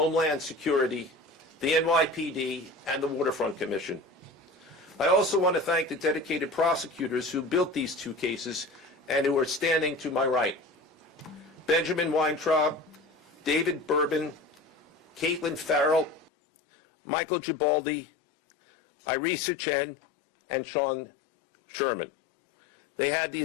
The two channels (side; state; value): right; drops out; at 16.3 s